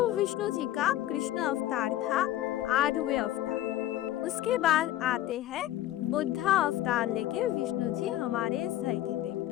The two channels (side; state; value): right; quieter; 13.9 dB